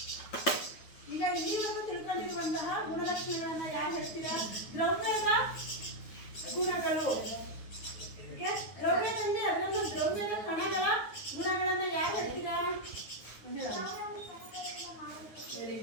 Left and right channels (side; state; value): right; late; 9.4 ms